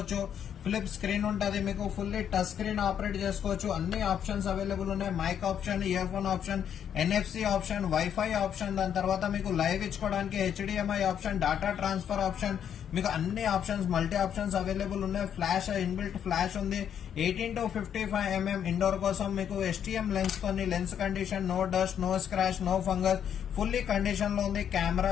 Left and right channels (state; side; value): quieter; right; 8.9 dB